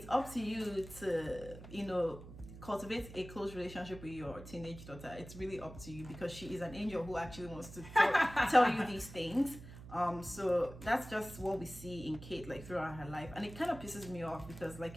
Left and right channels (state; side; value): noise; right; hum, 14 dB below the sound